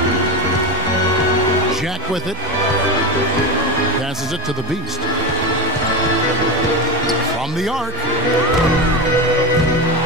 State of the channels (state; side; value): normal; both; correlation 0.19